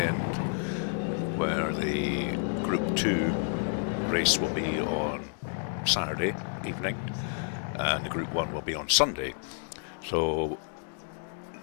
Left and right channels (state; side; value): silent; right; digital silence